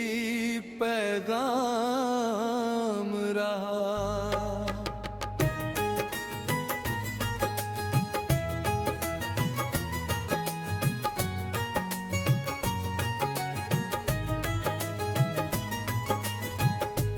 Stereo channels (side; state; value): both; identical; correlation 1.00